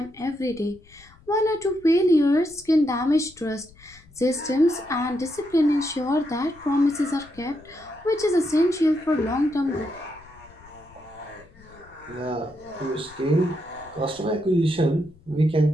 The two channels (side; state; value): left; noise; rumble, 25 dB below the sound